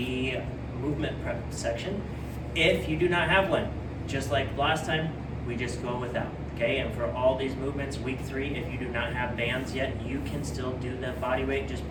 movement prep section. If you do not have one, just like last time, we just go without, okay? And for all these movements, week 3, if you do not have bands yet, you can still do the body weight. Just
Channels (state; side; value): identical; both; correlation 1.00